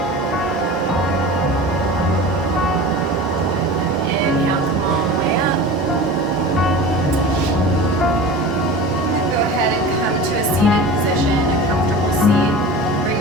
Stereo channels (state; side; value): normal; both; correlation 0.34